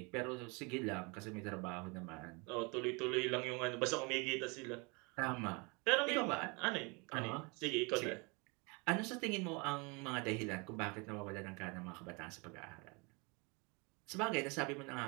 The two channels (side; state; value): left; quieter; 29.8 dB